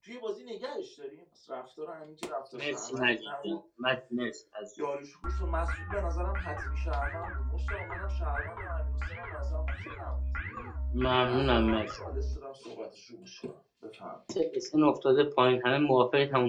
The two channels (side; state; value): both; identical; correlation 1.00